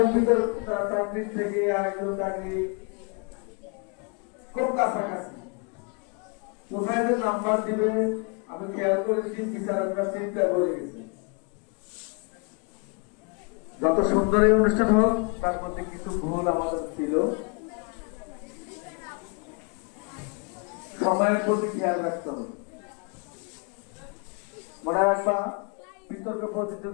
চাকরির থেকে আরেকজন চাকরি খুব কাছাকাছি, কোথায় যে নাম্বার দিবে আমি খেয়াল করেছি, বিচারকরা চিন্তা করে গেছে। যত সুন্দর এই অনুষ্ঠান হোক, তার মধ্যে কিছু ভুল আমাদের ছিল, সময়ের প্রতি খেয়াল রাখতে হবে। মনে রাখবা, বিতর্ক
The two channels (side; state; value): right; quieter; 35.2 dB